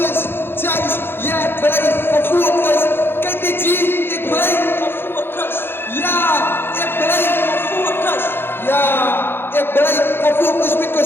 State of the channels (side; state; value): right; late; 0.10 ms